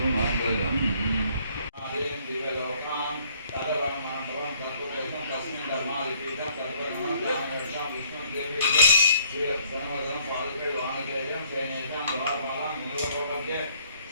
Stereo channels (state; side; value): inverted; both; correlation -0.63